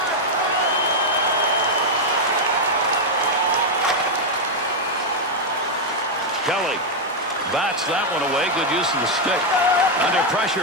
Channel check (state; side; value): normal; both; correlation 0.01